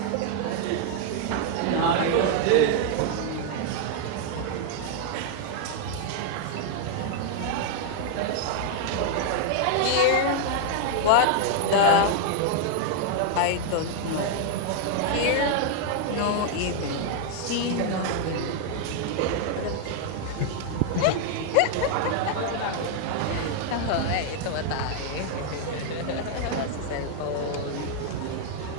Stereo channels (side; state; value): both; different; correlation 0.00